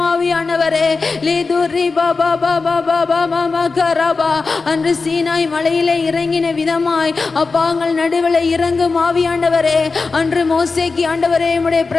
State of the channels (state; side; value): quieter; right; 4.2 dB